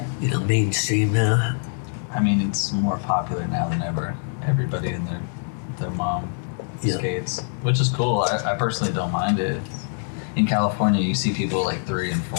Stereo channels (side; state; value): right; silent; 63 dB below the other